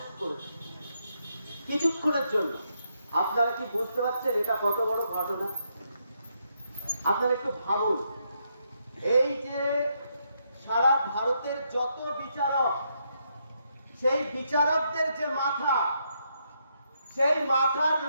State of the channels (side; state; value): both; inverted; correlation -0.78